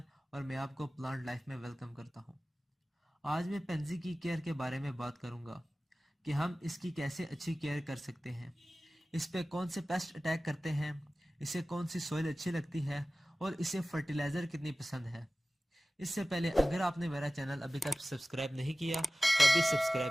और मैं आपको प्लांट लाइफ में वेलकम करता हूँ। आज मैं पेंजी की केयर के बारे में बात करूँगा कि हम इसकी कैसे अच्छी केयर कर सकते हैं, इस पे कौन से पेस्ट अटैक करते हैं, इसे कौन सी सॉइल अच्छी लगती है और इसे फर्टिलाइज़र कितनी पसंद है। इससे पहले अगर आपने मेरा चैनल अभी तक सब्सक्राइब नहीं किया तो अभी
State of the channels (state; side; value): normal; both; correlation 0.97